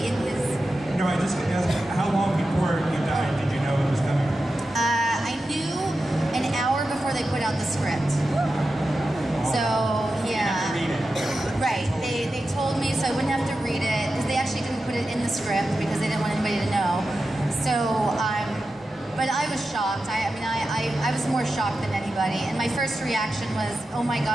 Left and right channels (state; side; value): normal; both; correlation 0.91